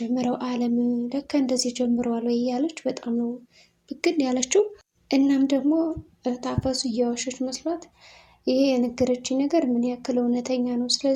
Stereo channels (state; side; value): identical; both; correlation 1.00